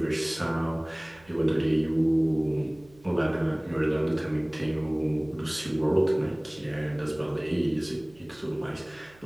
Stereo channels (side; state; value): right; noise; hum, 27 dB below the sound